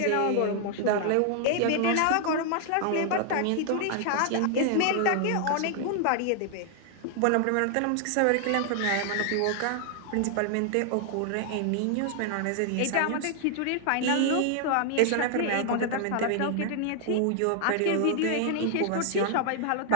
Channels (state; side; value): different; both; correlation 0.00